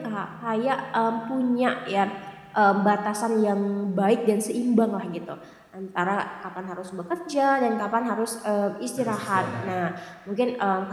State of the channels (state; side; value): identical; both; correlation 1.00